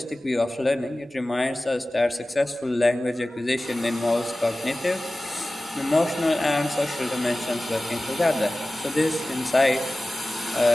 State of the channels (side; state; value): both; normal; correlation 0.96